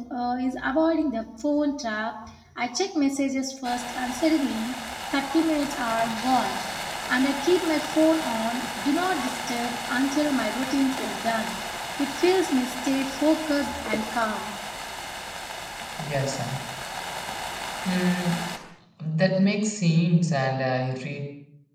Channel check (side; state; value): both; identical; correlation 1.00